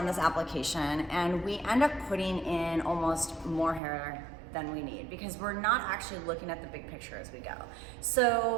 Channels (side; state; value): left; drops out; at 3.8 s